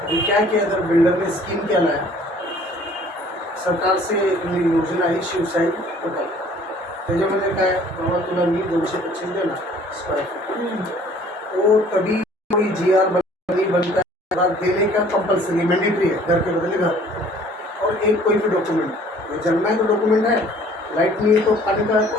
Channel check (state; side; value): normal; both; correlation 0.54